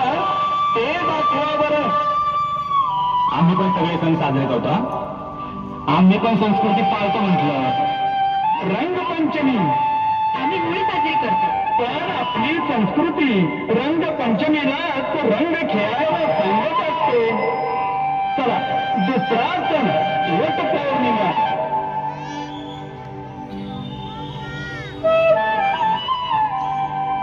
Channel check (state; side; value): identical; both; correlation 1.00